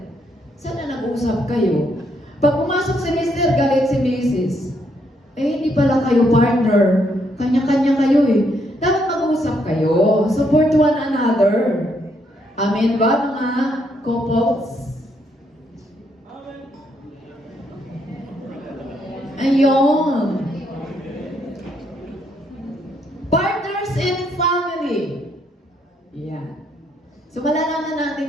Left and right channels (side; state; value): both; normal; correlation 0.74